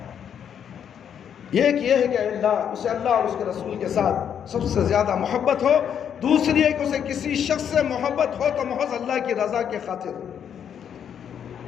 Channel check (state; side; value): quieter; right; 8.5 dB